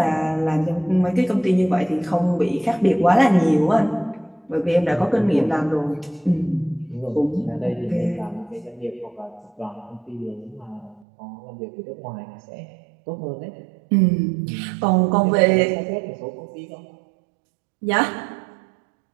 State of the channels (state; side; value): drops out; left; at 11.1 s